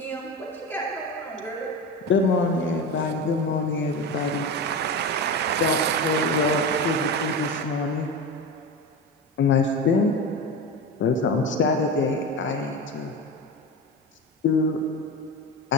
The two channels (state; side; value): normal; both; correlation 0.23